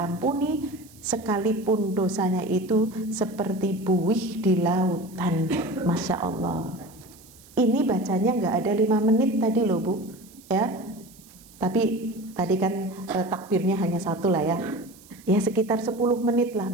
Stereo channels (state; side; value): noise; right; hiss, 24 dB below the sound